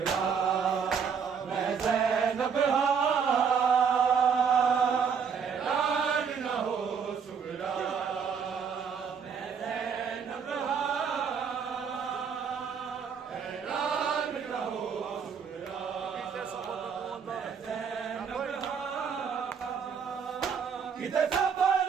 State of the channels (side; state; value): left; quieter; 6.6 dB